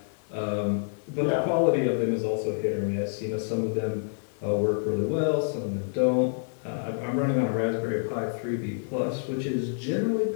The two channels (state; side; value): silent; right; digital silence